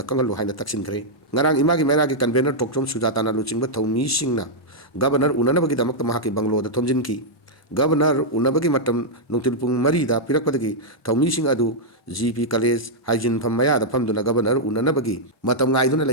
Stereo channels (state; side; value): normal; both; correlation -0.06